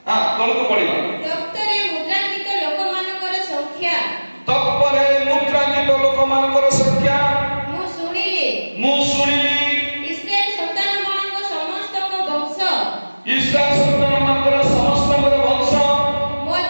हां तळको पडिबा डॉक्टरे मुद्रांकित लोक मानकर संख्या तत्परे मुद्रांकित लोक मानकर संख्या मु सुनिली इस्राएल संतान मानक समस्त को वंश इस्राएल संतान मानकर समस्त वंश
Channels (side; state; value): both; inverted; correlation -1.00